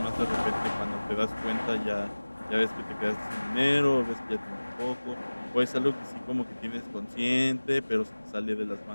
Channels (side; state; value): both; inverted; correlation -1.00